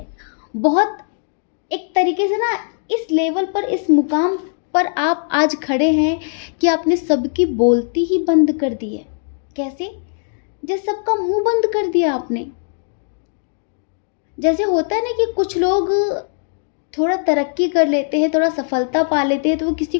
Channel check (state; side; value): silent; right; digital silence